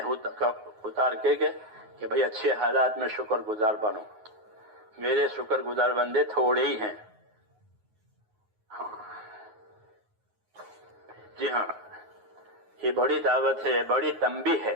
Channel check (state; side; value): late; left; 9.5 ms